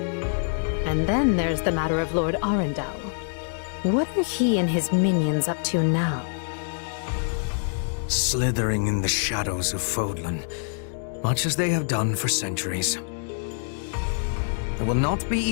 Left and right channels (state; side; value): silent; right; digital silence